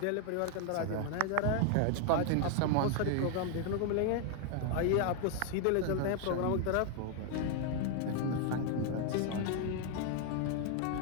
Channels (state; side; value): different; both; correlation 0.00